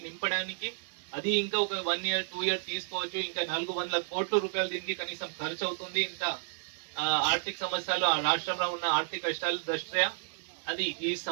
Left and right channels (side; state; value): left; silent; digital silence